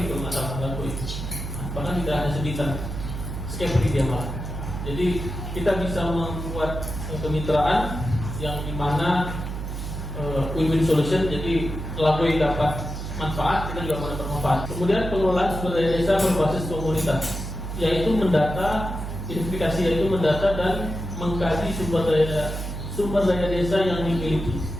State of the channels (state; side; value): noise; right; hum, 6 dB below the sound